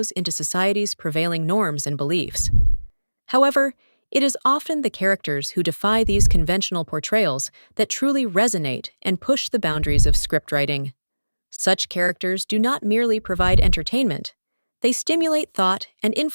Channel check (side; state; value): both; inverted; correlation -1.00